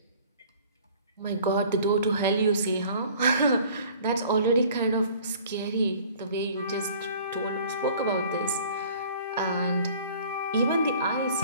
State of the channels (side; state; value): both; inverted; correlation -0.50